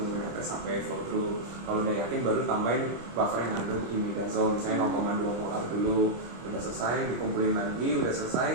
netes sampai flow through. Kalau udah yakin baru tambahin buffer yang ngandung imidazole, misalnya 0,2 molar dulu. Udah selesai, dikumpulin lagi, udah selesai,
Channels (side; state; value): left; late; 25 ms